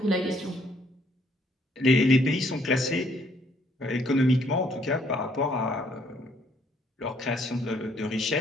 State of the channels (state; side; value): normal; both; correlation 0.66